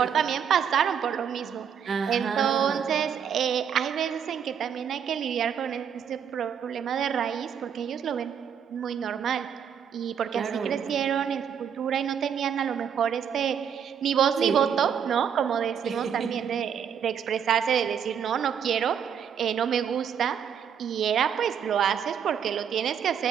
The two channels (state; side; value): quieter; left; 8.0 dB